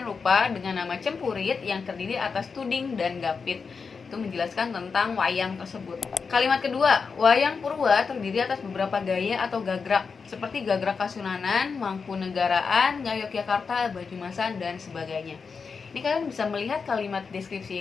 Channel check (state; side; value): quieter; right; 5.3 dB